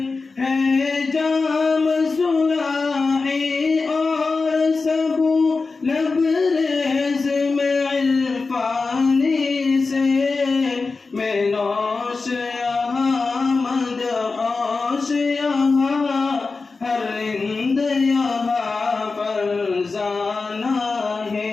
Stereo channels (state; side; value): quieter; right; 4.1 dB